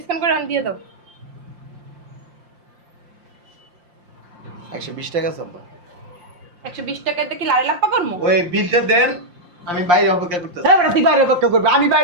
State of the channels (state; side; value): late; left; 5.7 ms